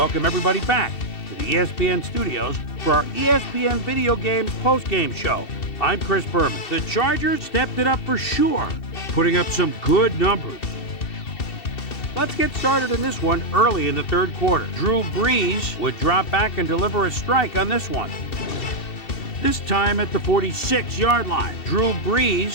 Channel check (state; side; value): late; right; 2.7 ms